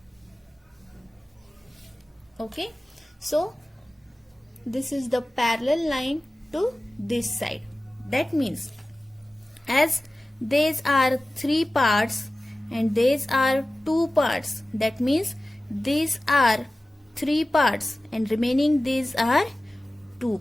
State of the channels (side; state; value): both; normal; correlation 0.96